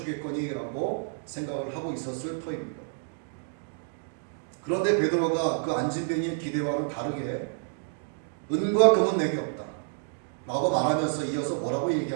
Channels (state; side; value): silent; left; digital silence